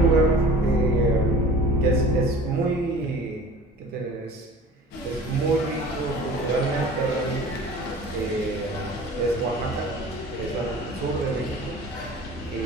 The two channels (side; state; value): both; normal; correlation 0.43